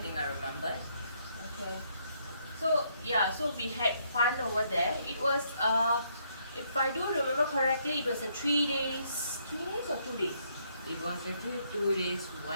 I remember. Okay. So yeah, so we had fun over there. It was if I do remember correctly, it was a 3 days or 2 days? It was actually 2 days,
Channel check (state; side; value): inverted; both; correlation -0.71